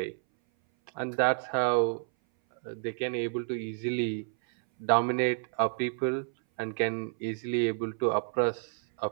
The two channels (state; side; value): silent; left; 58 dB below the other